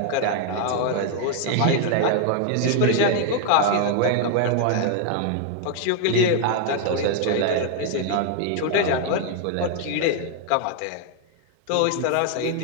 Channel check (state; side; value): different; both; correlation 0.00